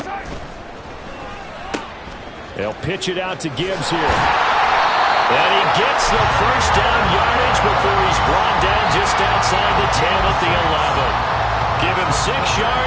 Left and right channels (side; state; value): both; identical; correlation 1.00